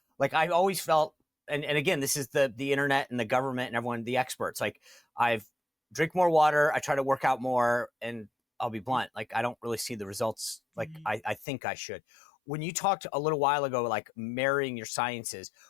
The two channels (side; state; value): right; drops out; at 11.5 s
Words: Like I always felt, and again, this is the internet and the government and everyone, the experts, like I've drink more water, I try to work out more, and I'll be blunt, like I don't really see the results like I think I should. When you talked a little while ago, like marrying your sciences,